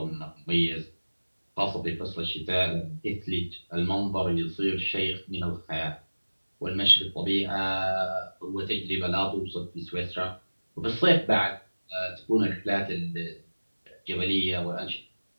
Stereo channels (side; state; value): both; inverted; correlation -1.00